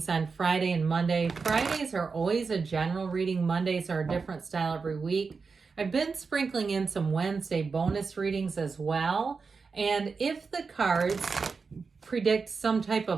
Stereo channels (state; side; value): quieter; left; 4.9 dB